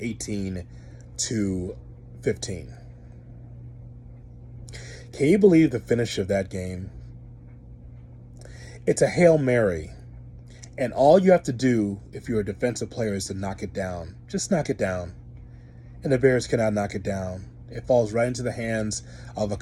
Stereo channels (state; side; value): identical; both; correlation 1.00